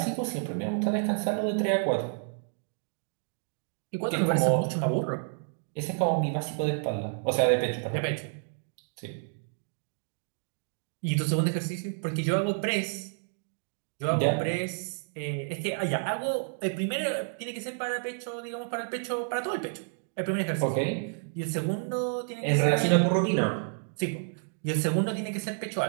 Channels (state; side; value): silent; left; digital silence